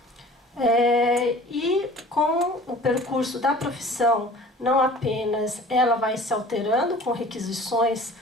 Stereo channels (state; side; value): normal; both; correlation 0.45